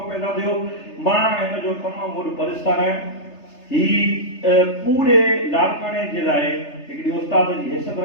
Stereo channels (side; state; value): right; late; 3.3 ms